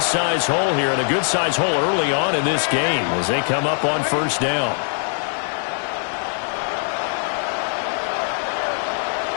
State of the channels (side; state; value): right; silent; 61 dB below the other